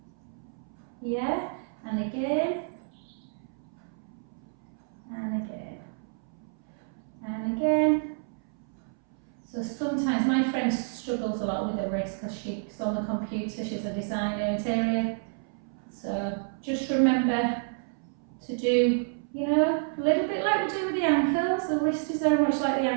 Yeah, and again. And again. And again. So sometimes my friend struggles a lot with her wrist because she's on the computer, she's a designer interior. So just remember to do, you know, a little bit like we do with the ankles. The wrist is very much like the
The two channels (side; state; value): left; silent; 58 dB below the other